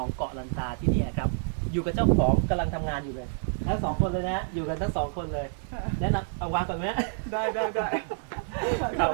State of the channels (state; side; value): silent; left; digital silence